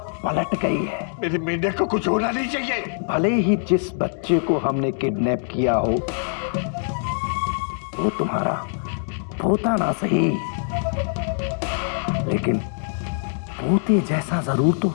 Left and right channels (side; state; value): right; silent; digital silence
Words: पलट गई है। मेरे मेंढक को कुछ होना नहीं चाहिए। भले ही जिस बच्चे को हमने किडनैप किया हो वो तुम्हारा पोता ना सही, लेकिन पोते जैसा जरूर तो है।